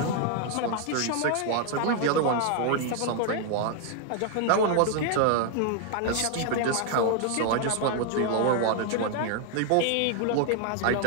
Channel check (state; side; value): different; both; correlation 0.00